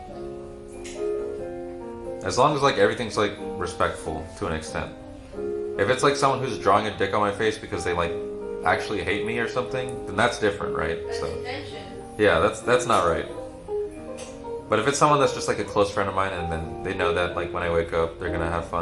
As long as like everything's like respectful to an extent. If it's like someone who's drawing a dick on my face because they like actually hate me or something, then that's different, right? That's So intention. yeah, that's not right. But if it's someone that's just like a close friend of mine and then they know that like when I wake up they're gonna have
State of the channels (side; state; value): both; identical; correlation 1.00